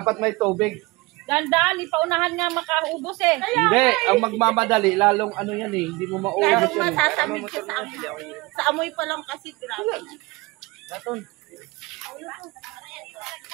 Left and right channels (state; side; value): quieter; left; 23.4 dB